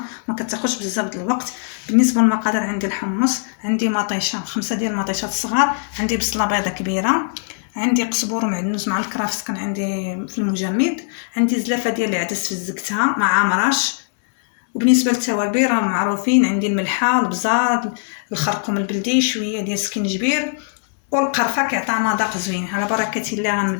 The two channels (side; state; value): right; silent; digital silence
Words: ما كتاخذش بزاف د الوقت. بالنسبه للمقادير، عندي الحمص، عندي مطيشه 5 ديال المطيشات الصغار، عندي بصله بيضه كبيره، عندي قزبور ومعدنوس مع الكرافس كان عندي في المجمد، عندي زلافه ديال العدس فزقتها مع مرش. وبالنسبه للتوابل راه معروفين، عندي الملحه، البزار، الخرقوم البلدي، شويه ديال السكينجبير والقرفه كيعطي مذاق زوين. على بركه الله